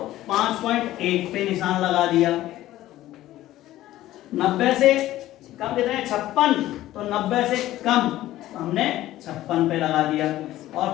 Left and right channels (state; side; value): quieter; right; 14.8 dB